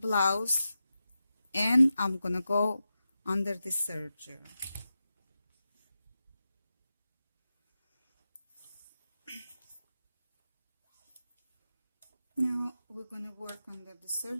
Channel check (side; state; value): both; inverted; correlation -0.91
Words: and I'm going to go under the serger. Now we're going to work under the